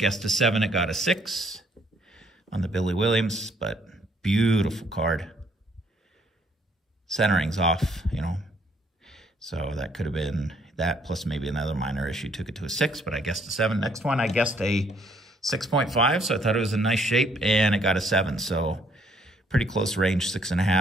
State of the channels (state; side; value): normal; both; correlation 0.66